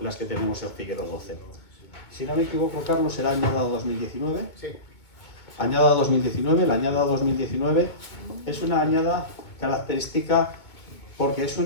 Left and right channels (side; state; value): right; late; 2.2 ms